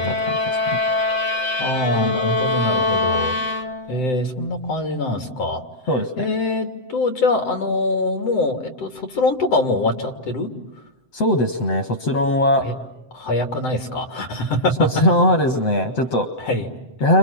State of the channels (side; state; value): right; late; 7.8 ms